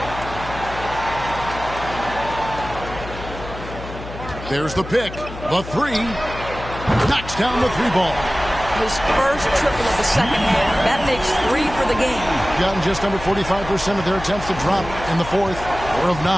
There's the pick. The three. Knocks down the three ball. His first triple of the second half. That makes 3 for the game. Gotten just under 45% of their attempts to drop in the fourth. 4 of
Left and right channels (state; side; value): noise; left; hum, 12 dB below the sound